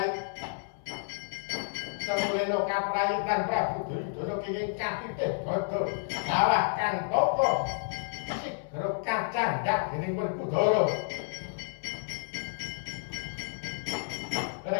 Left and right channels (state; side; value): silent; right; 57 dB below the other